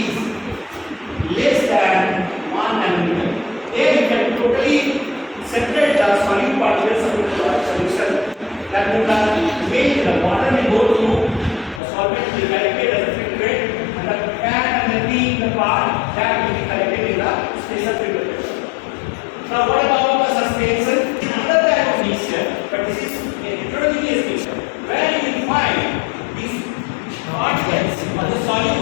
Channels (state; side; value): drops out; right; at 11.8 s